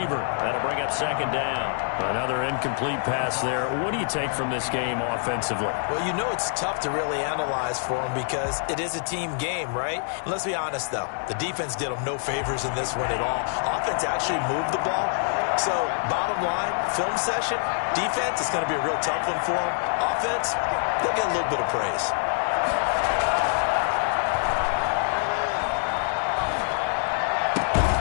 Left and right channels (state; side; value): silent; right; digital silence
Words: That'll bring up 2nd down. Another incomplete pass there. What do you take from this game offensively? Well, you know it's tough to really analyze for them because it is a team game, right? And let's be honest, though. The defense did them no favors in this one at all. Offense actually moved the ball. So, bottom line, film session, defense, it's going to be a real tough one for them. Offense, they'll get a little bit of praise.